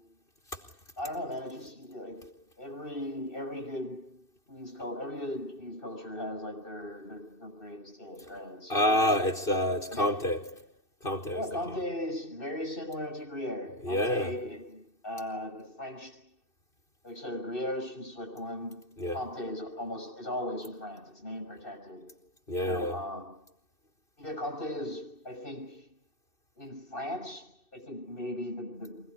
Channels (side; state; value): right; late; 2.6 ms